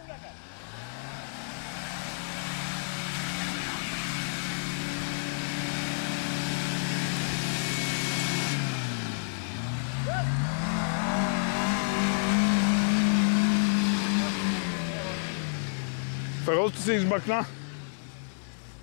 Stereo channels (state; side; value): silent; right; digital silence